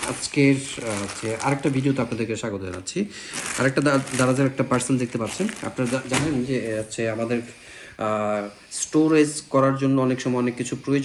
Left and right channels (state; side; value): identical; both; correlation 1.00